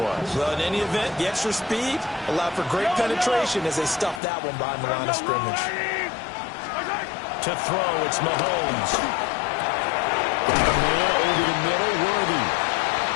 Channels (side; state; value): right; drops out; at 4.2 s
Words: Well, in any event, the extra speed allowed for great penetration as they stuffed that one behind the line of scrimmage. To throw, it's Mahomes. Got a man over the middle, Worthy.